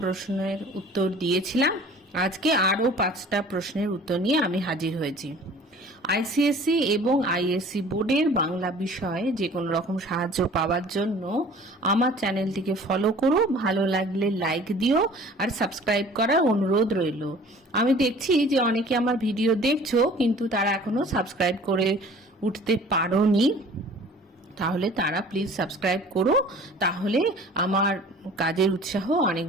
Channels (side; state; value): both; normal; correlation 0.47